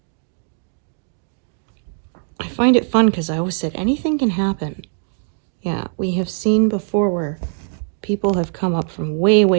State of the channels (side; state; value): left; silent; digital silence